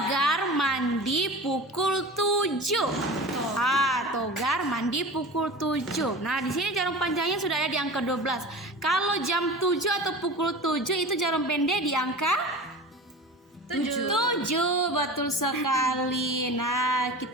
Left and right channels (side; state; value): both; normal; correlation 0.34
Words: mandi pukul 7. Togar mandi pukul 7. Nah, di sini jarum panjangnya sudah ada di angka 12. Kalau jam 7 atau pukul 7 itu jarum pendek di angka 7. Betul sekali. Nah,